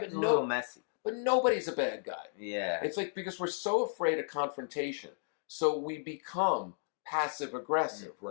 a little messy. But nobody's a bad guy. Yeah. It's like, because we're so afraid of confrontation. So we become passive aggressive,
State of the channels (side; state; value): right; silent; digital silence